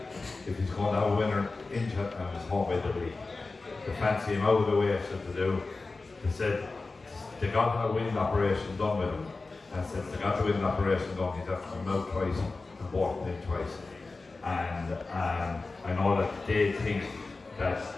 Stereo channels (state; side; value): quieter; right; 3.7 dB